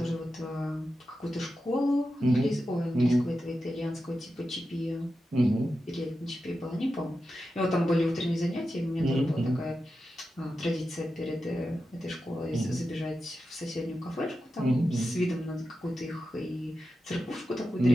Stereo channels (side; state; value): both; normal; correlation 0.90